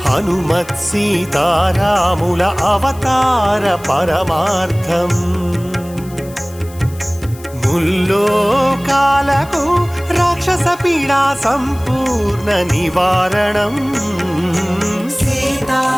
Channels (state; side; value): noise; left; hiss, 21 dB below the sound